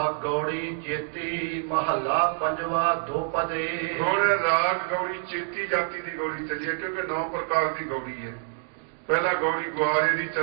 ਗੌੜੀ ਚੇਤੀ ਮਹੱਲਾ ਪੰਜਵਾ ਦੋਪਦੇ। ਹੁਣ ਰਾਗ ਗੌੜੀ ਚੇਤੀ ਜਾਤੀ ਦੀ ਗੌੜੀ ਚੱਲੀ ਹੈ, ਕਿਉਂਕਿ 9 ਪ੍ਰਕਾਰ ਦੀ ਗੌੜੀ ਹੈ। ਪਹਿਲਾਂ ਗੌੜੀ ਗੁਆਰੇ ਦੀ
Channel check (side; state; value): left; silent; digital silence